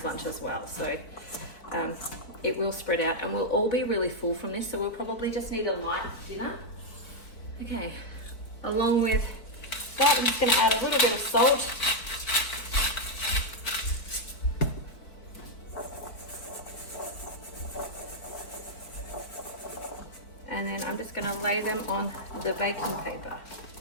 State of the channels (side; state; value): right; late; 4.3 ms